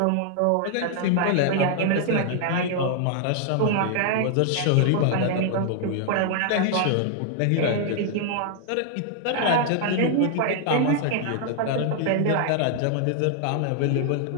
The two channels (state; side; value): different; both; correlation 0.00